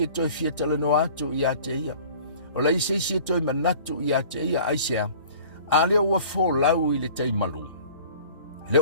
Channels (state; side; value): inverted; both; correlation -0.47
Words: o toi fia talano atu ia te ia. Wale ai seisi o toi manatu ia te ia aisea. A leo ua fōlau i le teimalu.